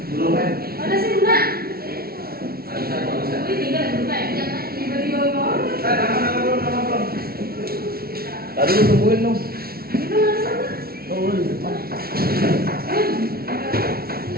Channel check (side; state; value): left; late; 0.44 ms